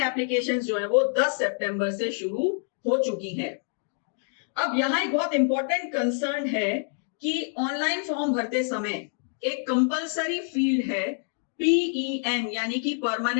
एप्लीकेशंस जो है वो 10 सितंबर से शुरू हो चुकी हैं। अब यहाँ एक बहुत इंपॉर्टेंट कंसर्न है कि ऑनलाइन फॉर्म भरते समय एक कंपलसरी फील्ड है PEN यानी कि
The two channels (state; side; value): silent; right; 60 dB below the other